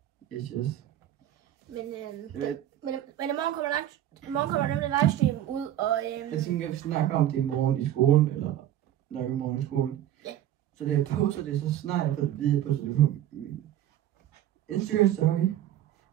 Yes. Men i morgen kommer nemlig livestream ud, og jeg tænker, at vi snakker om det i morgen i skolen, eller nok i morgen i skolen. Ja. Så det jeg poster det, så snart jeg får det videre på, så det på min Instagram story,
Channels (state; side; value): quieter; left; 12.1 dB